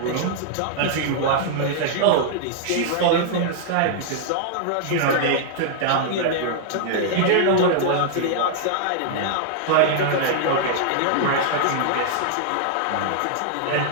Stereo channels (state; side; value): different; both; correlation -0.01